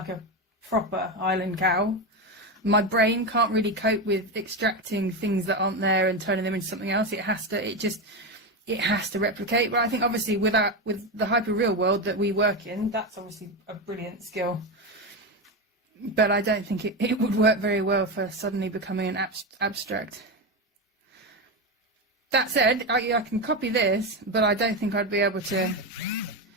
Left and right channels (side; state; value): both; normal; correlation 0.14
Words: a proper Highland cow. My brain can't really cope with extracting things that aren't there and turning them into something else. It has to replicate. But I think obviously with the hyperreal world that we work in, that's obviously a brilliant skill. But I don't think it would work very well for suddenly becoming an abstract. That said, I can copy this, but I don't think I'd be able to